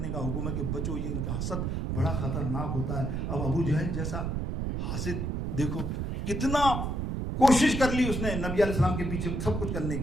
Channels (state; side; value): noise; right; rumble, 1 dB below the sound